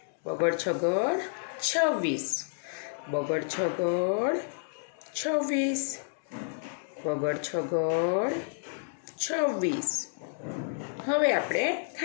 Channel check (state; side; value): silent; right; digital silence